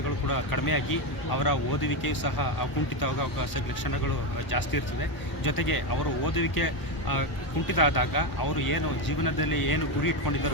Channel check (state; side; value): late; right; 1.0 ms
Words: ಕೂಡ ಕಡಿಮೆಯಾಗಿ ಅವರ ಓದುವಿಕೆಯು ಸಹ ಕುಂಠಿತವಾಗ ಲಕ್ಷಣಗಳು ಜಾಸ್ತಿ ಇರ್ತದೆ. ಜೊತೆಗೆ ಅವರು ಓದುವಿಕೆ ಕುಂಠಿತ ಆದಾಗ ಅವರು ಏನು ಜೀವನದಲ್ಲಿ ಏನು ಗುರಿ